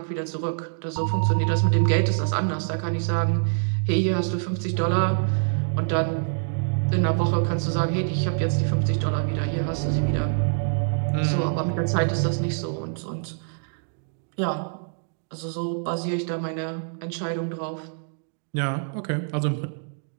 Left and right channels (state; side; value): silent; left; digital silence